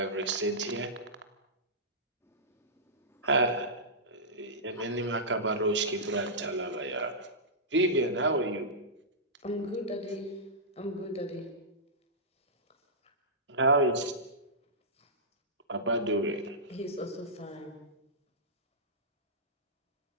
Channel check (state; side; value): normal; both; correlation -0.16